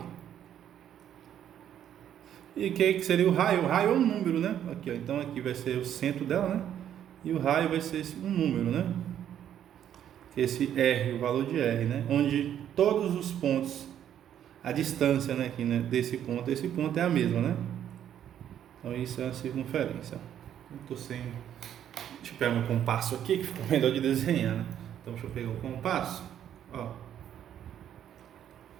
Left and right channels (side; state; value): left; quieter; 10.1 dB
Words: E o que seria o raio? O raio é um número, né? Aqui, ó. Então aqui vai ser o centro dela, né? E o raio vai ser um número, né? Esse R, o valor de R, né? Onde todos os pontos, a distância, né, aqui, né, desse ponto a esse ponto é a mesma, né? Então isso é a circunferência. Eu tô sem... Deixa eu pegar meu compasso aqui, que fica melhor de desenhar, né? Então, deixa eu pegar o compasso. Ó.